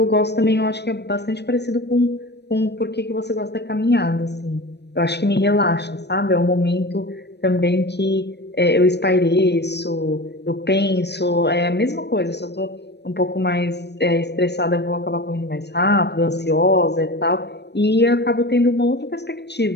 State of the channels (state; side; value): late; right; 0.49 ms